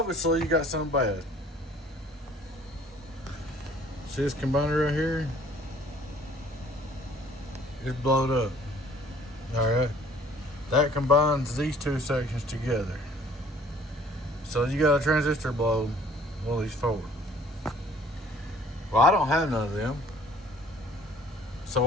you got something bad. See this combiner right here? It's blowed up. Alright. That combines these two sections together. So you got a transistor blow one of these forward. Well, I don't have none of them. So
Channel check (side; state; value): both; normal; correlation 0.55